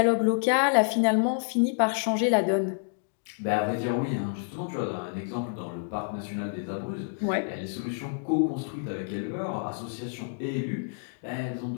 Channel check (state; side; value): silent; right; digital silence